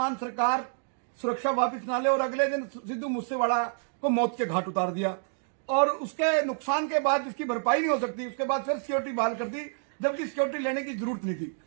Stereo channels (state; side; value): silent; left; digital silence